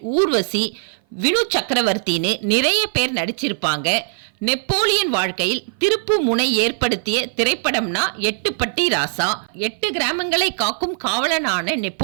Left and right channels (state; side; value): silent; left; 58 dB below the other